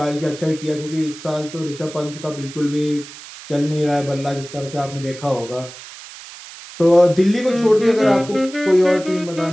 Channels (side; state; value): right; noise; hiss, 16 dB below the sound